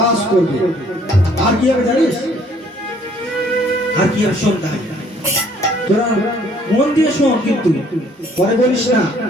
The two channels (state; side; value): normal; both; correlation 0.61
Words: করবে আর কি হবে জানিস আর কি হবে সন্ধ্যা তোরা মন দিয়ে শোন, কিন্তু পরে বলিস না